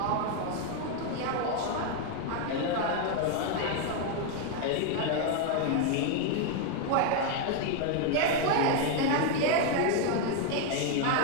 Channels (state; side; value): different; both; correlation 0.01